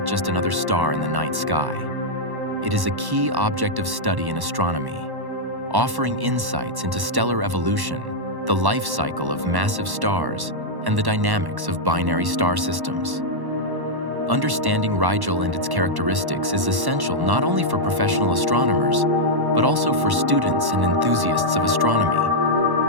just another star in the night sky. It is a key object of study in astronomy, offering insights into stellar evolution, the life cycle of massive stars, and the dynamics of binary star systems. Understanding Rigel and its characteristics is essential not only for professional astronomers, but also for students and enthusiasts of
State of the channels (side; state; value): left; late; 1.1 ms